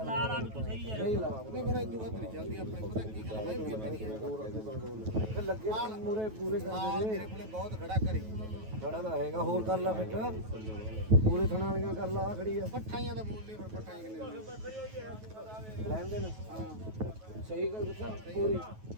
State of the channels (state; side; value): late; left; 9.3 ms